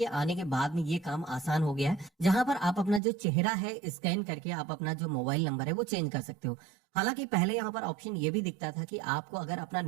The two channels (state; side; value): drops out; left; at 3.0 s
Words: आने के बाद में ये काम आसान हो गया है, जहां पर आप अपना जो चेहरा है स्कैन करके आप अपना जो मोबाइल नंबर है वो चेंज कर सकते हो। हालांकि पहले यहाँ पर ऑप्शन ये भी दिखता था कि आपको अगर अपना